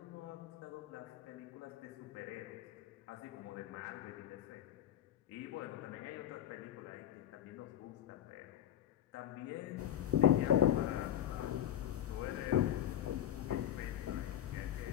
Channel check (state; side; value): quieter; right; 11.1 dB